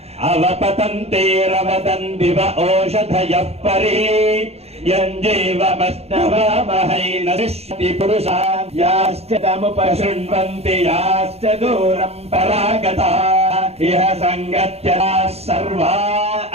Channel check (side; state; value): left; late; 0.30 ms